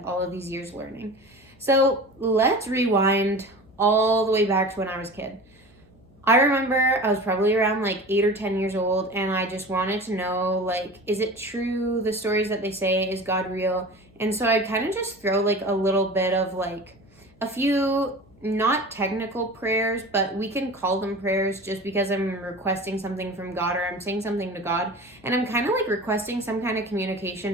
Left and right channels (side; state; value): left; noise; hum, 28 dB below the sound